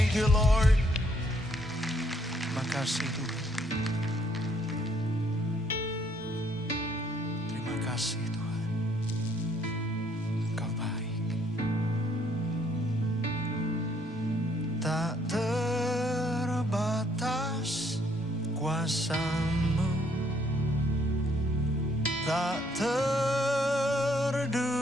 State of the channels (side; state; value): both; normal; correlation 0.67